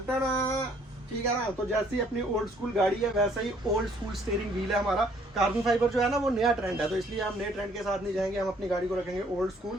ठीक है ना, तो जैसी अपनी ओल्ड स्कूल गाड़ी है वैसा ही ओल्ड स्कूल स्टीयरिंग व्हील है हमारा। कार्बन फाइबर जो है ना वो नया ट्रेंड है, तो इसलिए हम नए ट्रेंड के साथ नहीं जाएंगे, हम अपनी गाड़ी को रखेंगे ओल्ड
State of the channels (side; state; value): both; normal; correlation 0.62